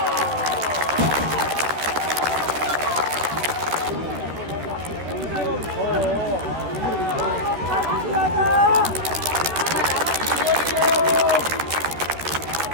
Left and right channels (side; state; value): left; late; 13 ms